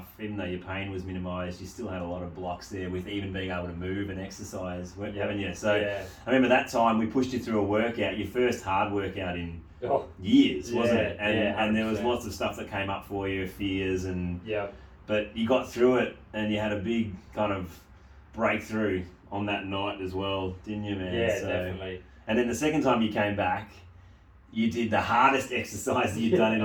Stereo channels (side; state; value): both; identical; correlation 1.00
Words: Even though your pain was minimised, you still had a lot of blocks there with even being able to move and exercise, haven't you? So I remember that time we pushed you through a workout, your first hard workout in years, wasn't it? And there was lots of stuff that came up for you, fears, and but you got through it, and you had a big kind of breakthrough on that night as well, didn't you, man? Yeah, definitely. And then the second time you came back, you did the hardest exercise that you'd done in